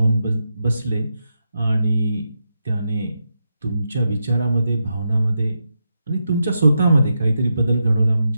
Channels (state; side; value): inverted; both; correlation -0.86